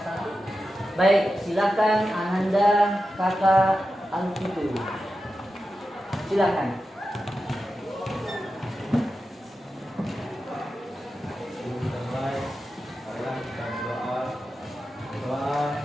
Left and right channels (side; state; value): both; normal; correlation 0.91